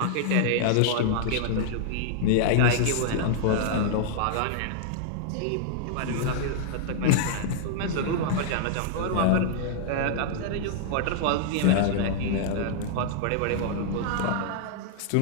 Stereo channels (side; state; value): both; different; correlation -0.01